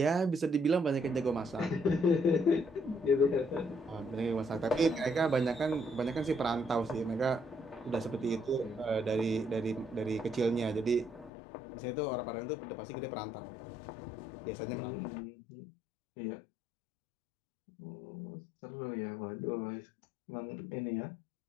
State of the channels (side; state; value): right; drops out; at 11.3 s